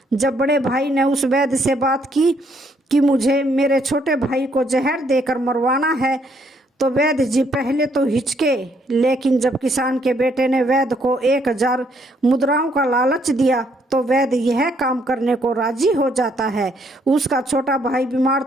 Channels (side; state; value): both; normal; correlation 0.70